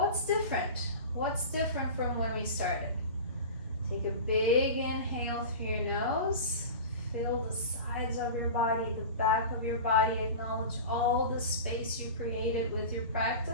different? What's different from when we started? Take a big inhale through your nose. Feel the sides of your body, the back of your body. Acknowledge all the space you created with your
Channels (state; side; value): inverted; both; correlation -0.31